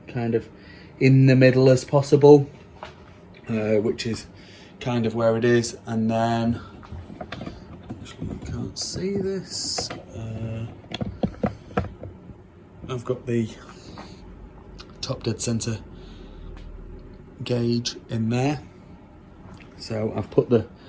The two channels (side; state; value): both; identical; correlation 1.00